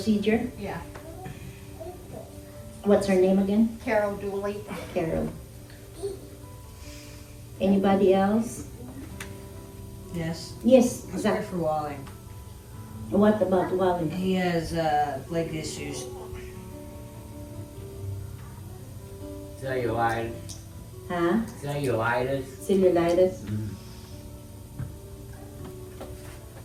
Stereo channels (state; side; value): identical; both; correlation 1.00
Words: Yeah, What's her name again? Carol Dooley. Carol. Anybody else? Yes, Yes, let's Zach. pray for Wally. What about Wally? He has leg issues. Cellulitis. Huh? Cellulitis. Cellulitis.